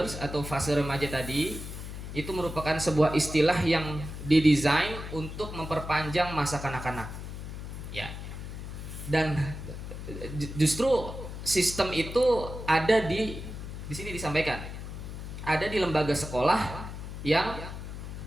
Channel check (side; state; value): left; noise; hum, 9 dB below the sound